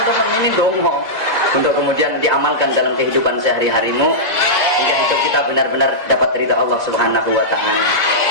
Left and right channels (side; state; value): right; late; 2.0 ms